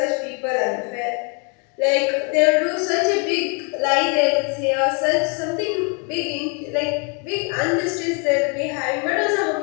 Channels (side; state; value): right; quieter; 36.4 dB